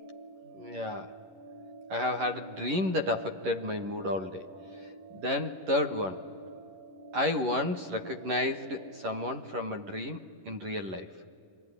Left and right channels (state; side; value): late; left; 11 ms